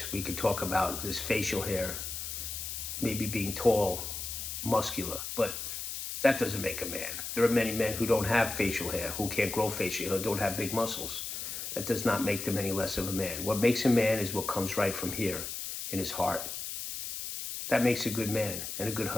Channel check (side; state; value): left; noise; hiss, 6 dB below the sound